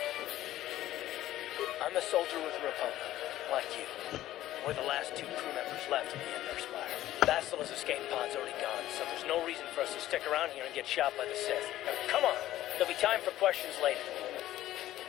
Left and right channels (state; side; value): quieter; right; 14.1 dB